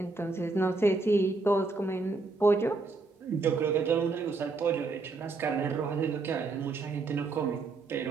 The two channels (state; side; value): quieter; left; 3.8 dB